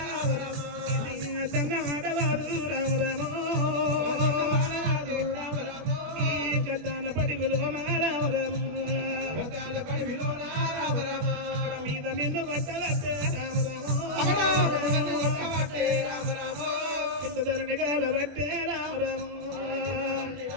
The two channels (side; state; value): left; late; 21 ms